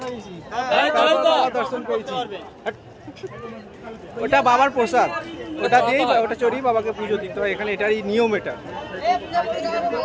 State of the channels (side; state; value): both; identical; correlation 1.00